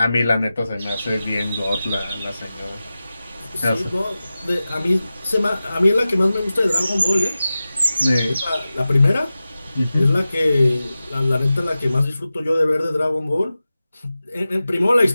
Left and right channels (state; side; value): inverted; both; correlation -0.95